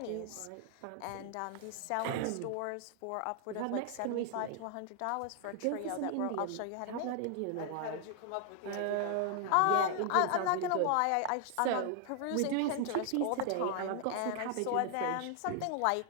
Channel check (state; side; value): different; both; correlation 0.00